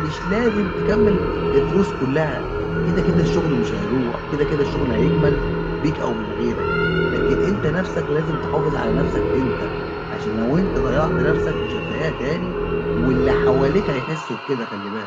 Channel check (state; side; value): identical; both; correlation 1.00